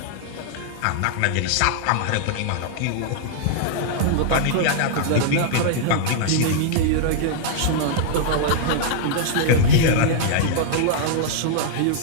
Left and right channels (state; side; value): different; both; correlation -0.01